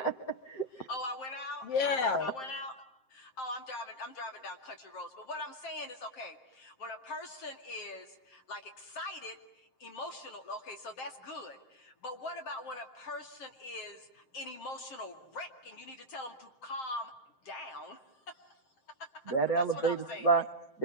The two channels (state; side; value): late; right; 7.6 ms